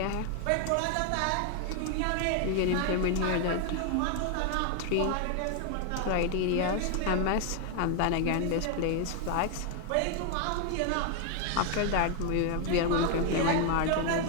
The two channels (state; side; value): different; both; correlation 0.01